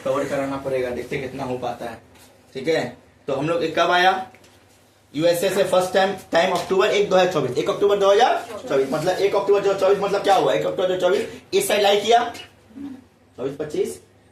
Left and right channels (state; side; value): identical; both; correlation 1.00